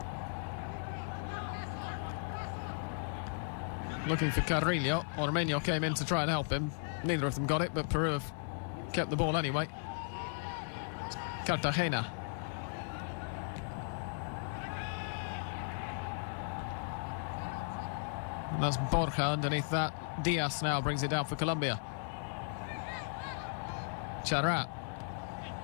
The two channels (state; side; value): silent; right; digital silence